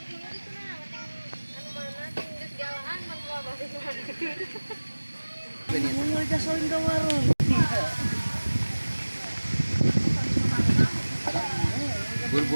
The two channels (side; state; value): both; inverted; correlation -1.00